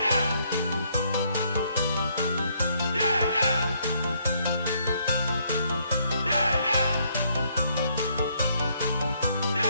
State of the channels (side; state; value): both; inverted; correlation -0.70